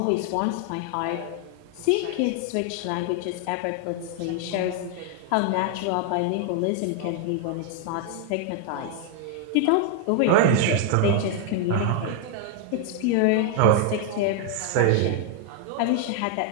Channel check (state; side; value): different; both; correlation 0.00